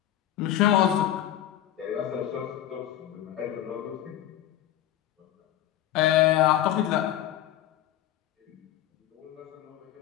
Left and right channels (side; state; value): right; quieter; 12.2 dB